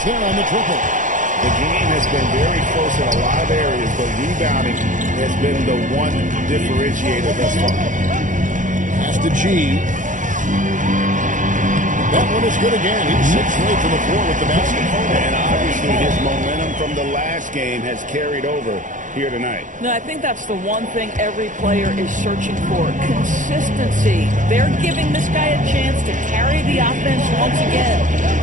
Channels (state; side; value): late; left; 0.37 ms